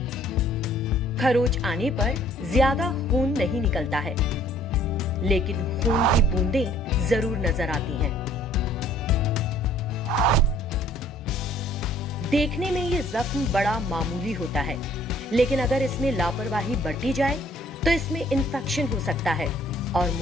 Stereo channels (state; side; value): normal; both; correlation 0.58